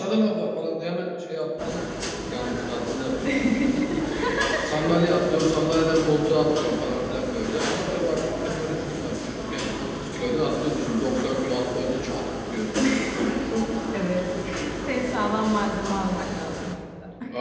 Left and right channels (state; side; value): identical; both; correlation 1.00